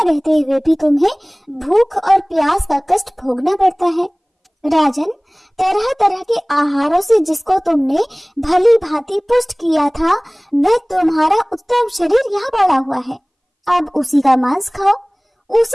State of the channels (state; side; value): identical; both; correlation 1.00